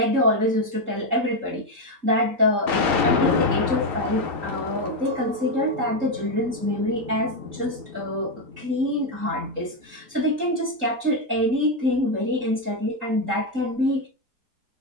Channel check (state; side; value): late; left; 3.8 ms